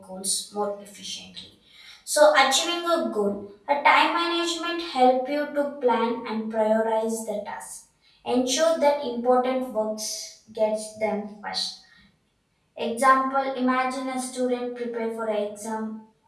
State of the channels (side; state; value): both; identical; correlation 1.00